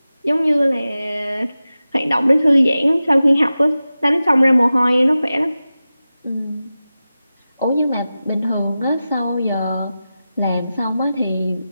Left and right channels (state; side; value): inverted; both; correlation -0.94